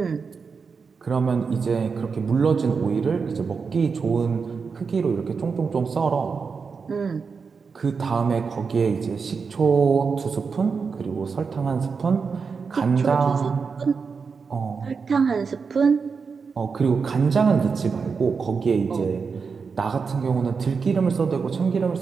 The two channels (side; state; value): left; quieter; 5.3 dB